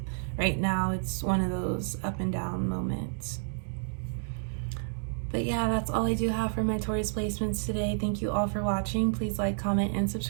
right now it's one of those up and down moments. But yeah, that's all I do have for my Taurus placements today. Thank you all for watching. Please like, comment, and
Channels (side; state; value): left; silent; digital silence